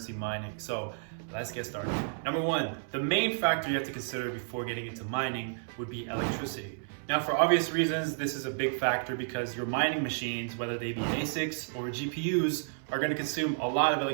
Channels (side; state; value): left; silent; 57 dB below the other